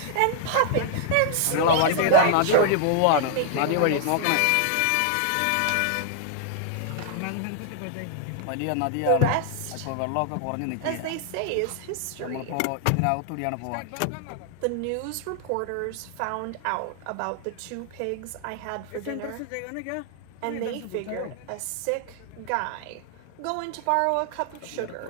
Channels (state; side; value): different; both; correlation 0.00